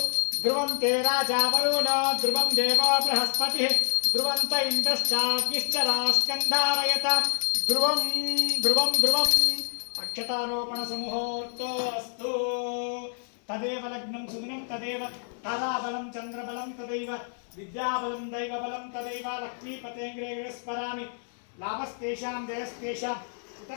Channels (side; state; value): right; silent; digital silence